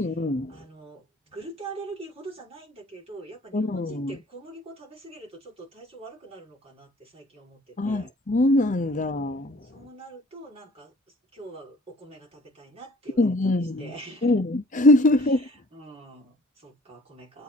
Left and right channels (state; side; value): normal; both; correlation 0.52